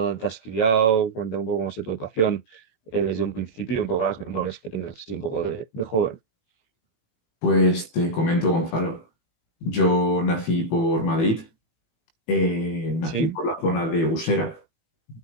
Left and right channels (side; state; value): right; late; 18 ms